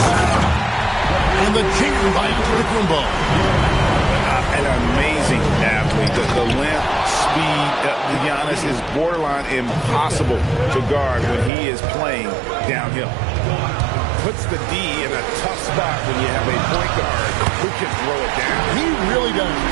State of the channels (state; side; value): drops out; left; at 11.5 s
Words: And the chicken bite to the Kumbo. An amazing athlete. The length, speed, Giannis is borderline impossible to guard when he is playing downhill. Puts the D in a tough spot when you have a point guard who can throw it down. He really does.